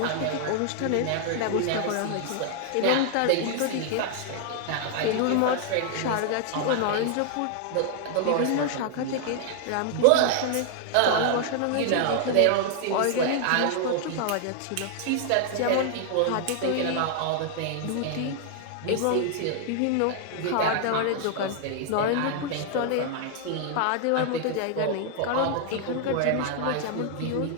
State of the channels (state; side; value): different; both; correlation 0.00